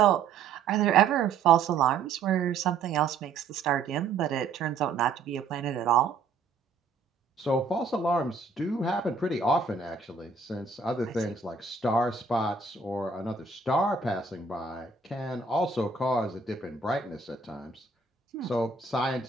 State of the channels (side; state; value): left; quieter; 4.8 dB